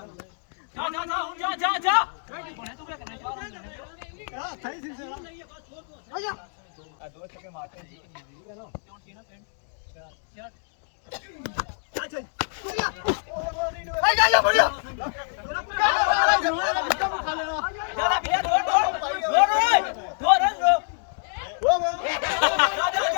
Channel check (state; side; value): silent; right; 61 dB below the other